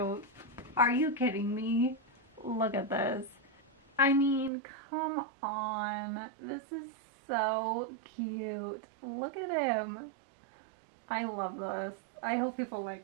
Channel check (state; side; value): drops out; left; at 4.5 s